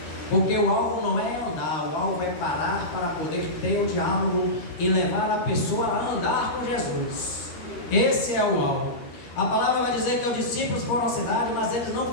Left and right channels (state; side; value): late; right; 13 ms